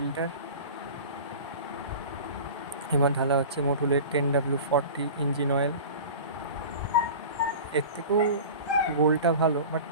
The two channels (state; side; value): inverted; both; correlation -0.36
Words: এবার ঢালা হচ্ছে মোটুলের 10W40 ইঞ্জিন অয়েল। এর থেকেও গোলটা ভালো, বাট